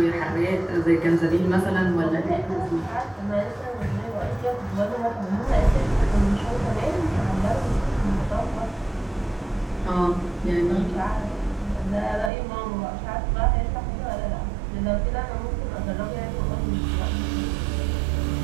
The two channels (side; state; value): left; drops out; at 12.3 s